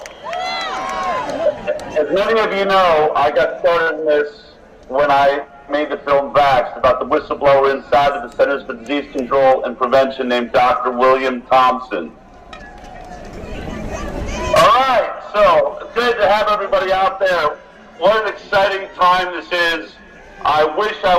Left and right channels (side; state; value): both; identical; correlation 1.00